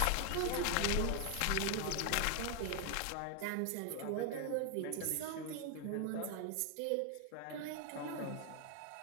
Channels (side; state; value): both; different; correlation 0.00